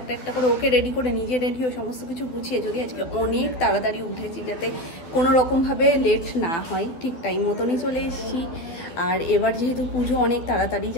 একটা করে ওকে রেডি করে, নিজে রেডি ও সমস্ত কিছু গুছিয়ে যদি আজকে অনেক তাড়াতাড়ি উঠেছি যাতে কোনো রকমভাবে লেট না হয়, ঠিক টাইম মতনই চলে এসেছি। আর এবার যেহেতু পুজো অনেক তাড়াতাড়ি,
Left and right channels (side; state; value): right; late; 12 ms